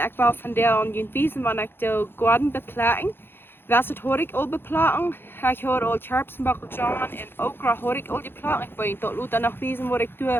wil vandaag jullie wijzen wanneer ik de Goaden beplekken. Was het hoor ik al beplekken? Ik hoor al scherpsenbakkeltjes en okra hoor ik al beplekken. Ik wil je tot later nog wijzen wat ik doe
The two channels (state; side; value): late; right; 0.10 ms